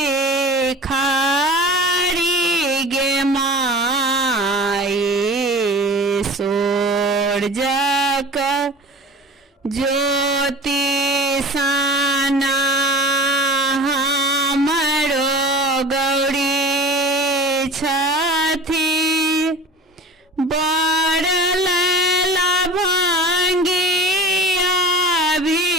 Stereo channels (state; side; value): normal; both; correlation 0.39